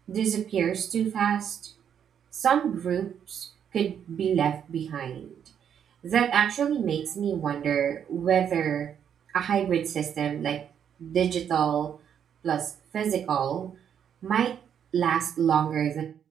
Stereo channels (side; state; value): left; quieter; 8.5 dB